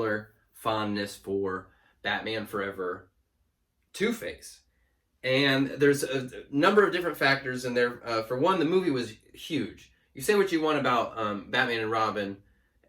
fondness for Batman Forever Two-Face. And there's a number of different factors in there. For one, the movie was huge. You say what you want about Batman and Robin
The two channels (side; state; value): both; identical; correlation 1.00